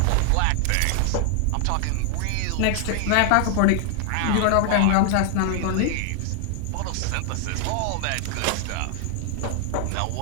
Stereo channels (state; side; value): different; both; correlation 0.00